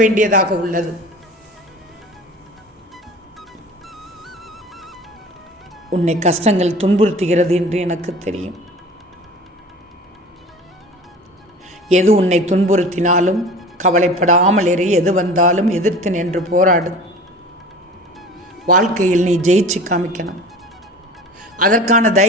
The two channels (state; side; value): normal; both; correlation 0.39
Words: வேண்டியதாக உள்ளது. உன்னை கஷ்டங்கள் துன்புறுத்துகிறது என்று எனக்கு தெரியும். எது உன்னை துன்புறுத்தினாலும் கவலைப்படாமல் இரு. எது வந்தாலும் எதிர்த்து நின்று போராடு. வாழ்க்கையில் நீ ஜெயிச்சு காமிக்கணும். அதற்கான